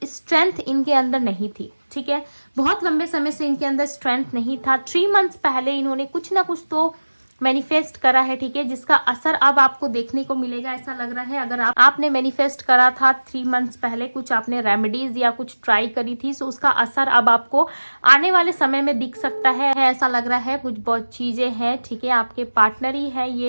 स्ट्रेंथ इनके अंदर नहीं थी। ठीक है, बहुत लंबे समय से इनके अंदर स्ट्रेंथ नहीं था। 3 मंथ्स पहले इन्होंने कुछ ना कुछ तो मैनिफेस्ट करा है। ठीक है, जिसका असर अब आपको देखने को मिलेगा, ऐसा लग रहा है। अगर आपने मैनिफेस्ट करा था 3 मंथ्स पहले, कुछ आपने रेमेडीज या कुछ ट्राई करी थी, सो उसका असर अब आपको आने वाले समय में दिख सकता है। ऐसा लग रहा है कुछ बहुत चीजें हैं। ठीक है, आपके पार्टनर ही है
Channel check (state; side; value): inverted; both; correlation -1.00